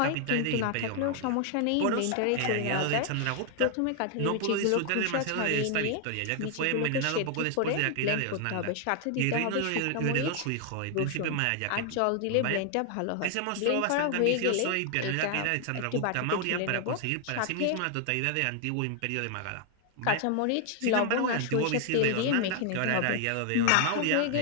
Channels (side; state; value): both; different; correlation 0.00